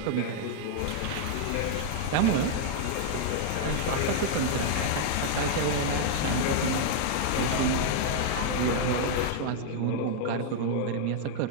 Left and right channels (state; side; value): different; both; correlation -0.01